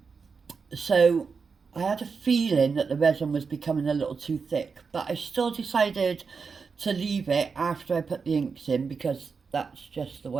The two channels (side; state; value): left; quieter; 5.2 dB